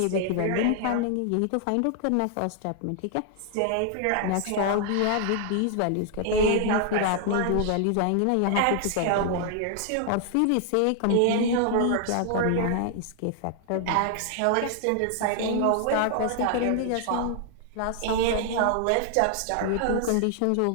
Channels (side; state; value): both; different; correlation 0.00